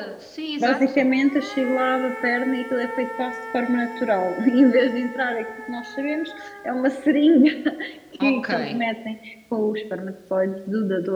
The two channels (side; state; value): both; identical; correlation 1.00